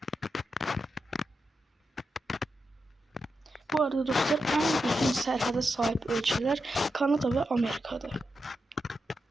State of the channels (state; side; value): normal; both; correlation 0.87